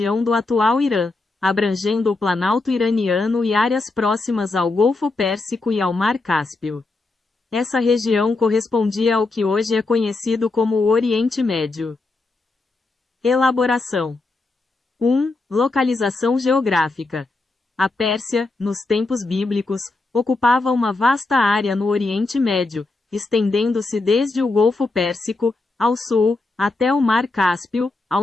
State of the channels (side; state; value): right; quieter; 3.3 dB